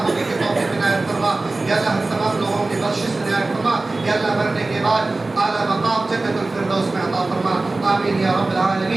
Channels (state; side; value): quieter; left; 3.2 dB